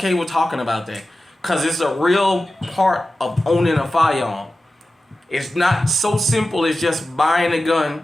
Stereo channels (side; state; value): both; normal; correlation 0.94